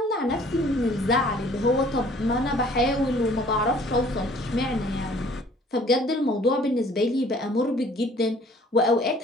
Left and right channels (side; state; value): both; normal; correlation 0.55